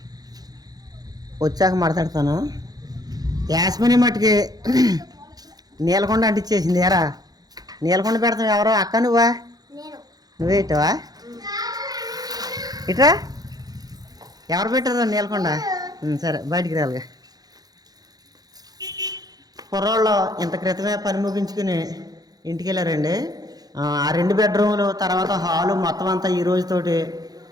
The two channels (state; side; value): late; left; 0.19 ms